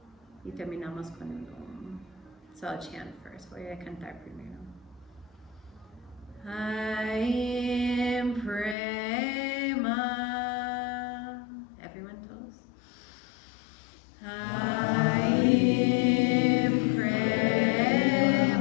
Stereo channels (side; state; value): right; drops out; at 8.8 s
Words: y terminamos con un Om. So I'll chant first. Voy a cantar primero. Aim Prema. Everyone told us? Aim